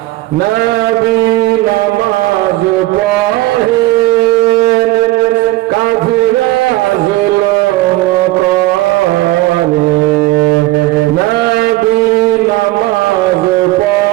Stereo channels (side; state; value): left; quieter; 18.4 dB